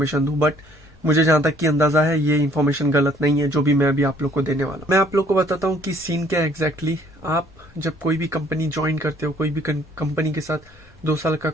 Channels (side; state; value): both; normal; correlation 0.60